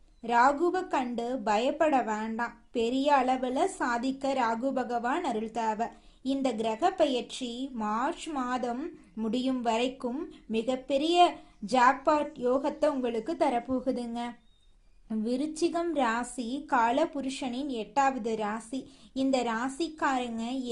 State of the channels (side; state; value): both; identical; correlation 1.00